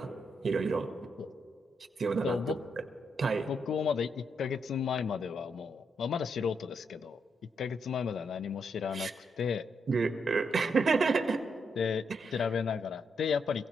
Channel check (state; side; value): normal; both; correlation 0.79